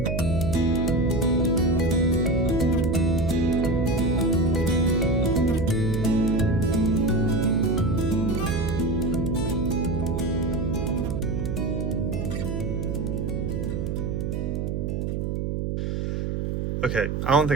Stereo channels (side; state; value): right; noise; hum, 1 dB below the sound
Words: Okay, I don't